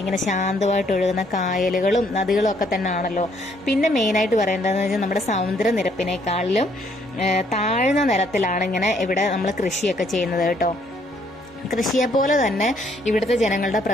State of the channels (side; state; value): both; normal; correlation 0.67